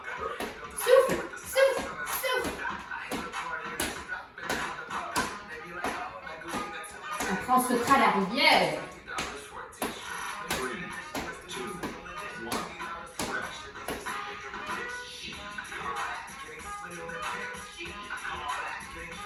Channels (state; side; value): identical; both; correlation 1.00